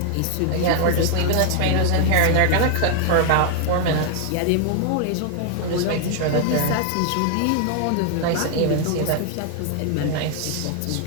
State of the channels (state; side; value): different; both; correlation 0.00